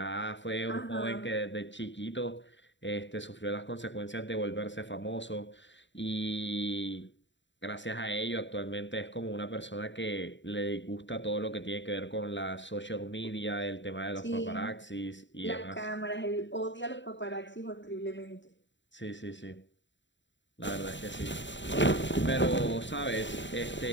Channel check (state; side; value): late; right; 0.53 ms